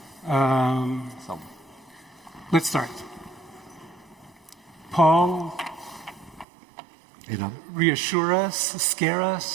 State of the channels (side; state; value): left; drops out; at 6.5 s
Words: Let's start. Paul, Edahn. Reassure us, scare